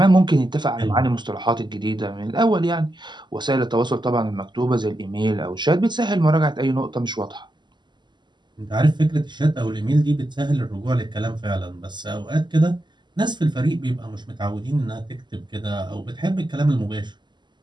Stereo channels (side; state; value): left; late; 0.21 ms